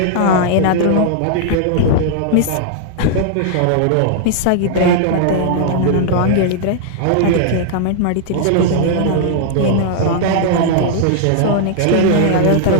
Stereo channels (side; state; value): both; different; correlation -0.01